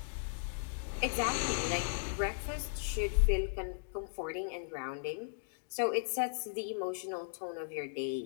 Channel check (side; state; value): right; silent; digital silence